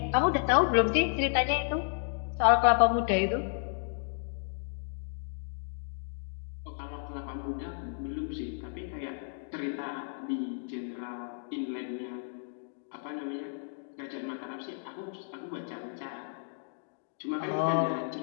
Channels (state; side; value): silent; right; digital silence